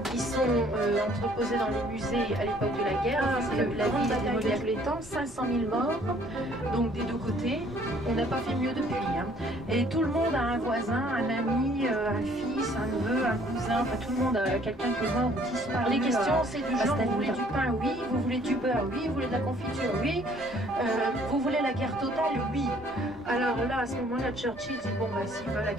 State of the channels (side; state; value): both; normal; correlation 0.59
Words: qui sont entreposés dans les musées à l'époque de la guerre. C'est la grande bataille de tous les temps, 500 000 morts, donc des deux côtés. On n'a pas fait mieux depuis. Et tout le monde a un voisin, un ami, un fils, un neveu, un cousin, enfin tout le monde a quelqu'un qui est mort ou disparu. Les questions c'est du genre, vous voulez du pain? Oui. Vous voulez du beurre? Oui. Vous voulez de la confiture? Oui. Vous voulez la guerre totale? Oui. Alors là, à ce moment-là, Churchill dit bon bah s'ils veulent la